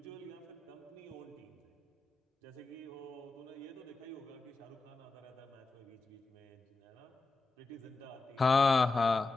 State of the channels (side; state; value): right; quieter; 3.7 dB